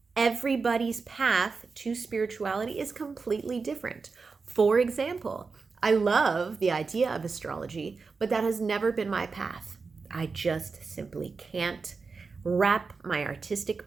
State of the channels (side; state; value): left; quieter; 4.6 dB